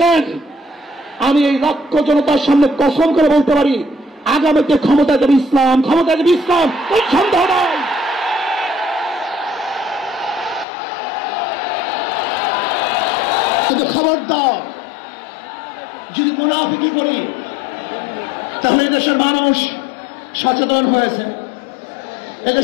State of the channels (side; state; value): right; drops out; at 10.7 s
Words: আমি এই লক্ষ জনতার সামনে কসম করে বলতে পারি আগামীতে ক্ষমতা দেবে ইসলাম, ক্ষমতা দেবে ইসলাম, কোনো সন্দেহ নাই। কিন্তু খবরদার যদি মুনাফিকি করি তাহলে এদেশের মানুষ সচেতন হয়েছে,